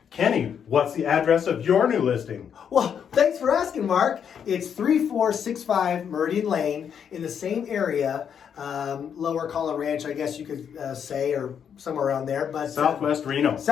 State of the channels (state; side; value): quieter; right; 7.9 dB